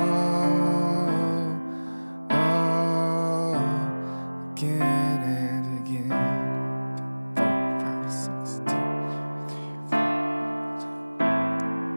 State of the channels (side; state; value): both; inverted; correlation -1.00